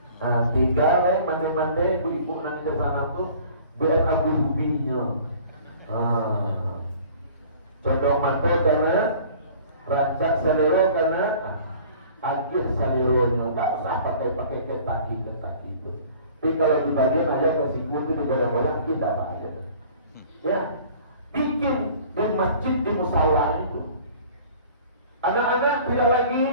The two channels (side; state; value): both; inverted; correlation -0.49